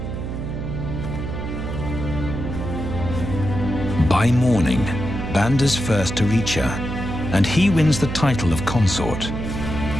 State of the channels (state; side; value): noise; right; hum, 5 dB below the sound